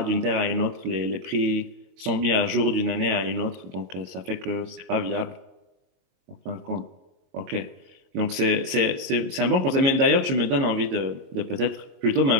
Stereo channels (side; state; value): left; late; 22 ms